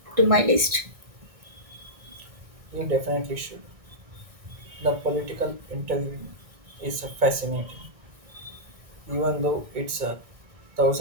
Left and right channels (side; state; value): left; late; 1.6 ms